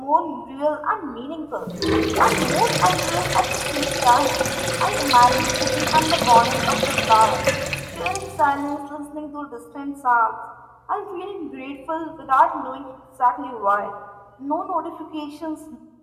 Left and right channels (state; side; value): identical; both; correlation 1.00